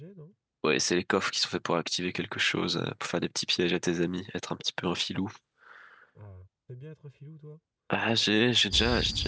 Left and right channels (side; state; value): both; identical; correlation 1.00